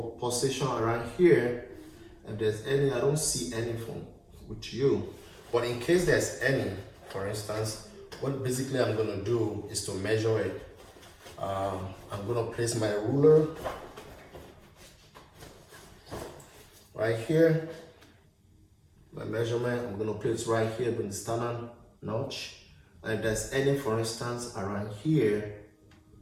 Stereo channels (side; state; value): both; identical; correlation 1.00